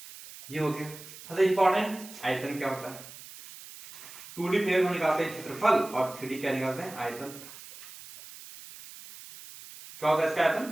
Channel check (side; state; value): right; noise; hiss, 16 dB below the sound